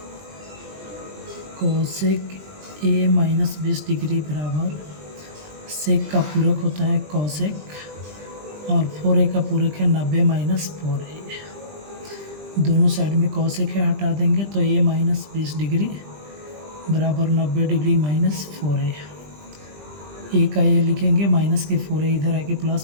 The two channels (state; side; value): late; left; 20 ms